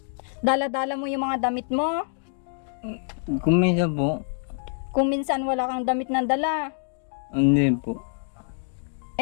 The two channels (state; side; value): silent; right; digital silence